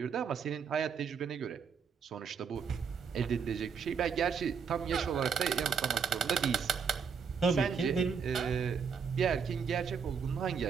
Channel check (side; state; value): left; quieter; 6.3 dB